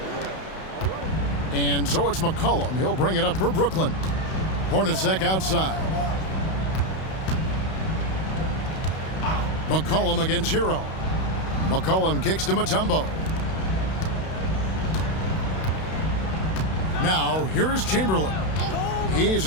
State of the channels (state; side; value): late; right; 31 ms